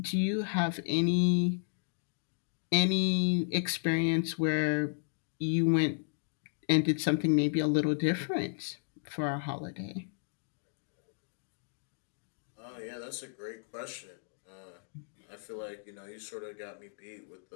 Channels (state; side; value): silent; right; digital silence